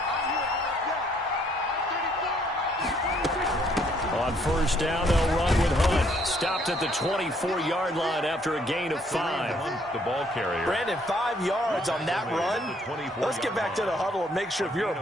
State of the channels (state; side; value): normal; both; correlation 0.66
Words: On 1st down, they'll run with Hunt. Stopped at the 24-yard line after a gain of 5. The ball carrier. Brandon, 5 yards on that run. Let's get back to the huddle and make sure if you're